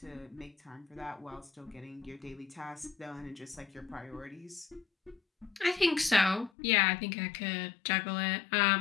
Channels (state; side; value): drops out; right; at 6.5 s